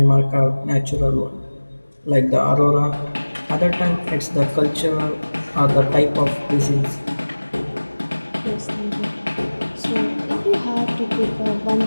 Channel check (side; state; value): both; inverted; correlation -1.00